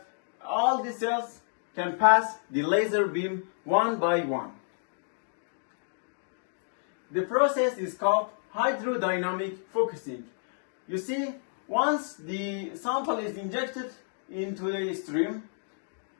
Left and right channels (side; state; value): right; silent; digital silence